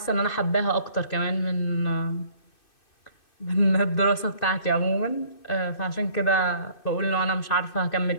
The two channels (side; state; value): right; late; 2.6 ms